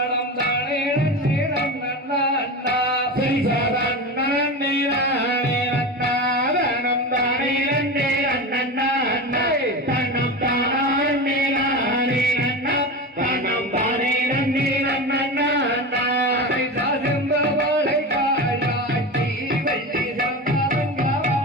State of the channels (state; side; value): normal; both; correlation 0.25